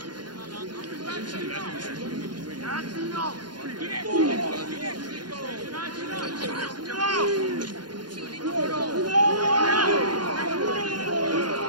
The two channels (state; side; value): late; left; 0.71 ms